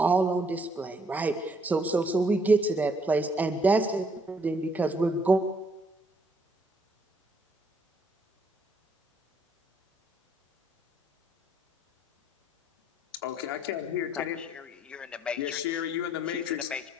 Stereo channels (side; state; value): both; normal; correlation 0.68